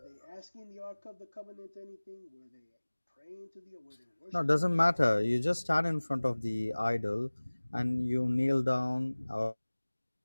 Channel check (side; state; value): both; inverted; correlation -1.00